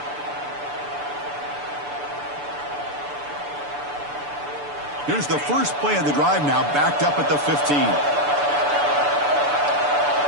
Here's the first play of the drive now, backed up at the 15.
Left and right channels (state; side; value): late; left; 6.9 ms